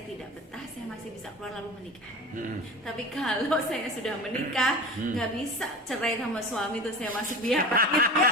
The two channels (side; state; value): both; normal; correlation 0.32